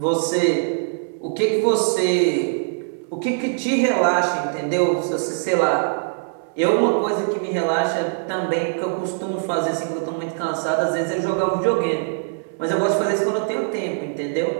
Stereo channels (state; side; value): silent; left; 64 dB below the other